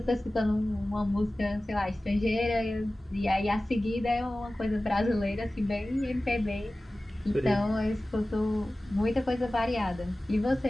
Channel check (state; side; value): normal; both; correlation 0.97